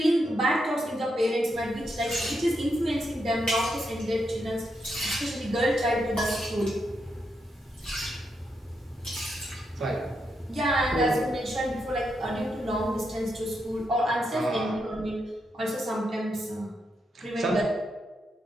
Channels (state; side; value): normal; both; correlation 0.82